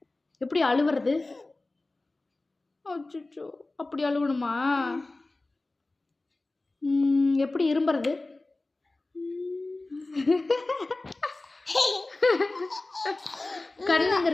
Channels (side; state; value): right; quieter; 3.0 dB